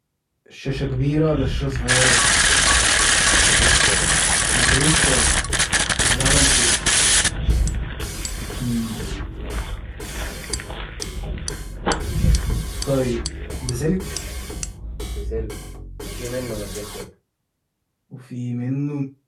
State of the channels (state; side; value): identical; both; correlation 1.00